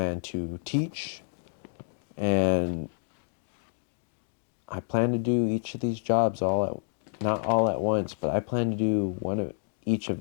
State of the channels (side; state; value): right; silent; digital silence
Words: to teach, and I plan to do each of these jobs not all at once, but I plan to do one of each of